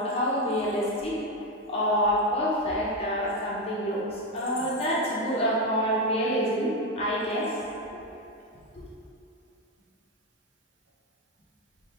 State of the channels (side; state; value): both; normal; correlation 0.09